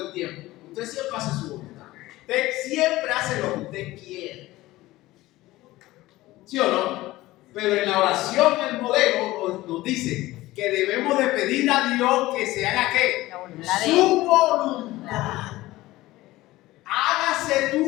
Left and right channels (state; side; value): quieter; right; 17.8 dB